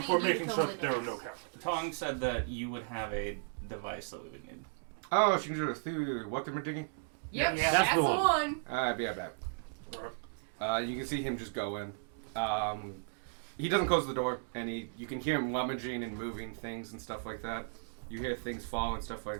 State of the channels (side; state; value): left; silent; digital silence